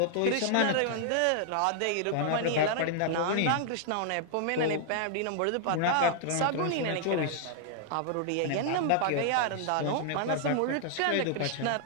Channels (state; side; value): different; both; correlation 0.00